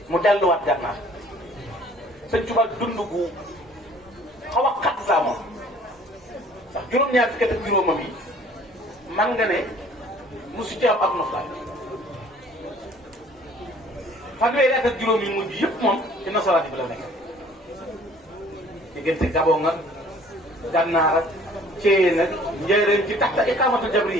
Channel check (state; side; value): normal; both; correlation 0.54